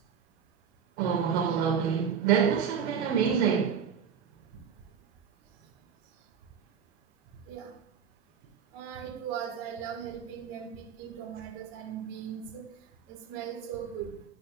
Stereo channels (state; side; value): quieter; left; 7.4 dB